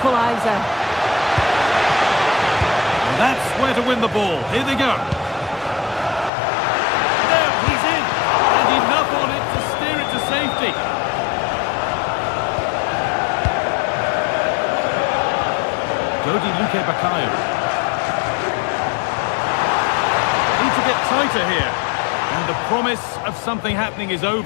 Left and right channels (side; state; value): right; drops out; at 6.3 s